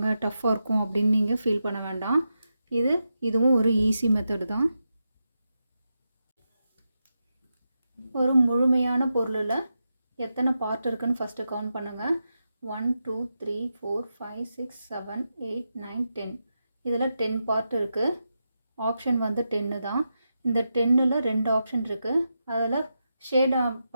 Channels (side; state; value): both; inverted; correlation -0.88